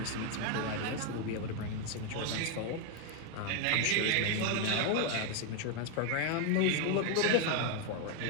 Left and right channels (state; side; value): different; both; correlation 0.01